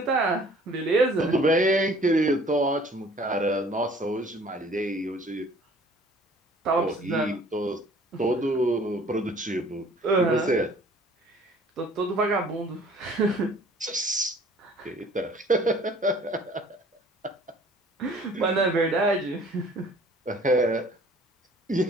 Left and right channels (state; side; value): normal; both; correlation 0.53